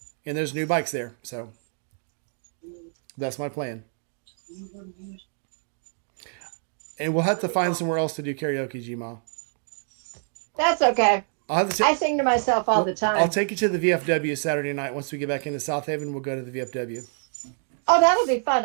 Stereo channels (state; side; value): silent; left; 61 dB below the other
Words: And there's new bikes there, so that's my plan. And we'll have to find somewhere else to do karaoke, Gma. That's okay. I'll have to I sing to myself all the time. I'll take you to the VFW Saturday night. Once we get back into South Haven, we'll go to the VFW. Oh, that'll be fun.